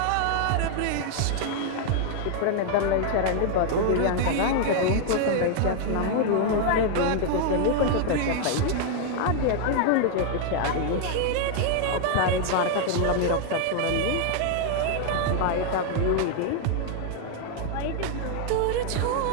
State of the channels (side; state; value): both; different; correlation 0.00